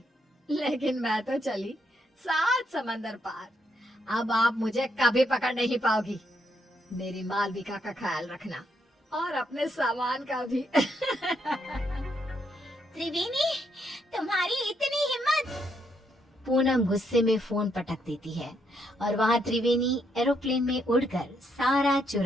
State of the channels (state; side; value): normal; both; correlation 0.76